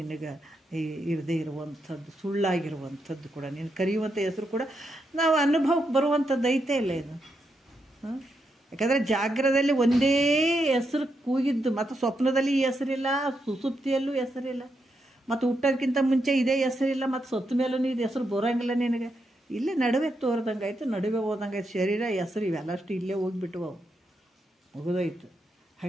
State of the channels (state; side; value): normal; both; correlation 0.82